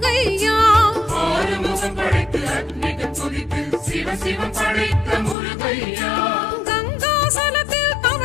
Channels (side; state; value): right; drops out; at 5.4 s